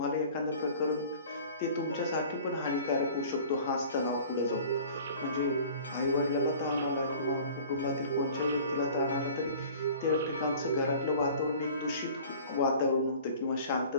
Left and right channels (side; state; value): both; inverted; correlation -0.46